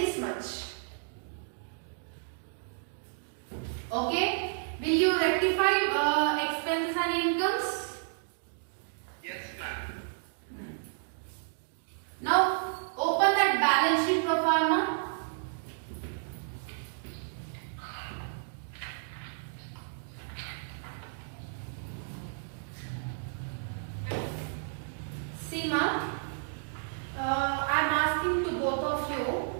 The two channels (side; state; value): left; silent; digital silence